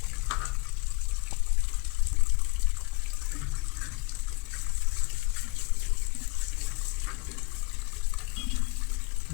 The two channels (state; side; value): quieter; right; 28.3 dB